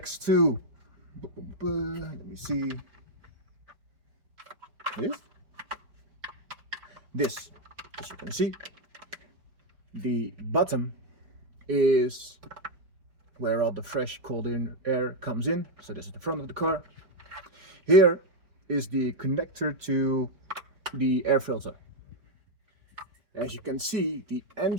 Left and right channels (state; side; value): late; left; 5.0 ms